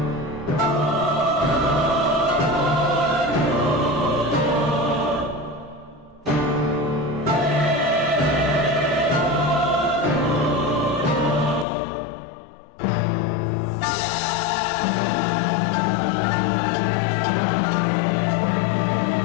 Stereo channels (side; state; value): right; drops out; at 11.7 s